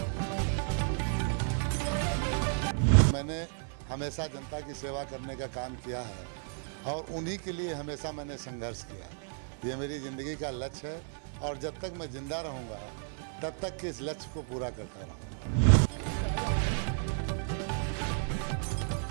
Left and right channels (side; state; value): left; silent; 56 dB below the other